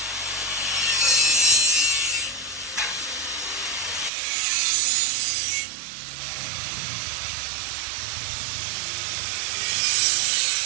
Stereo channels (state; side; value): drops out; left; at 4.1 s